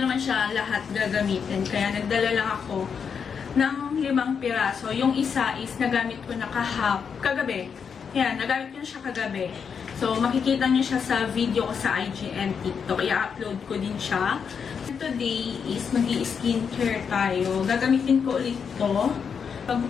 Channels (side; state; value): right; quieter; 6.6 dB